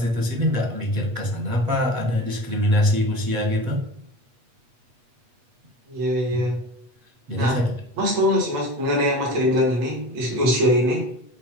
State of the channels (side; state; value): left; late; 8.3 ms